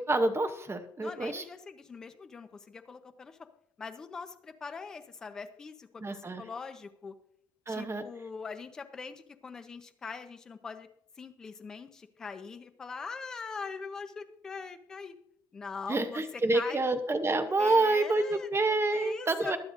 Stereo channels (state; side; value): normal; both; correlation 0.77